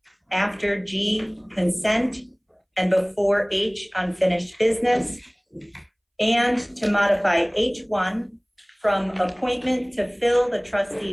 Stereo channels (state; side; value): identical; both; correlation 1.00